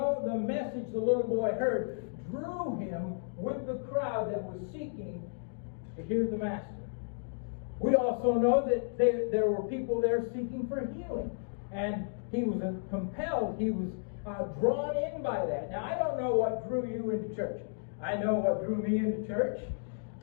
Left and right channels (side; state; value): right; silent; digital silence